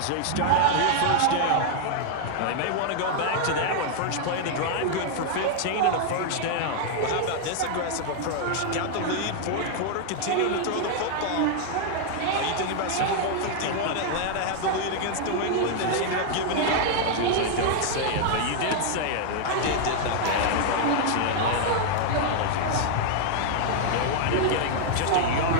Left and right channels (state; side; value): different; both; correlation 0.00